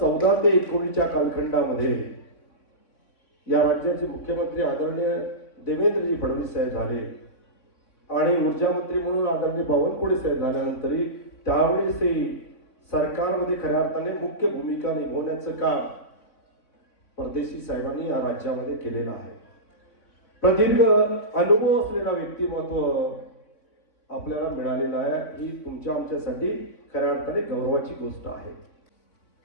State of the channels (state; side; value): late; right; 3.6 ms